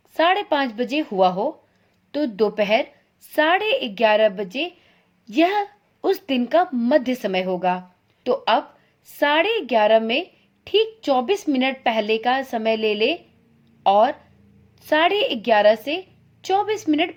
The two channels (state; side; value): identical; both; correlation 1.00